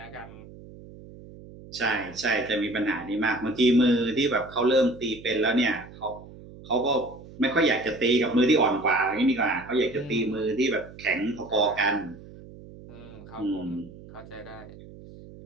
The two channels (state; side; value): noise; right; hum, 18 dB below the sound